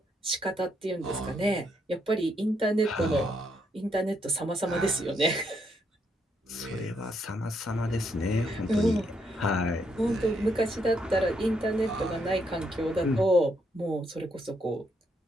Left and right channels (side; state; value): both; normal; correlation 0.76